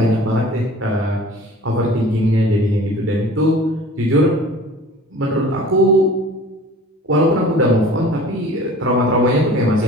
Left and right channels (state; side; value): normal; both; correlation 0.44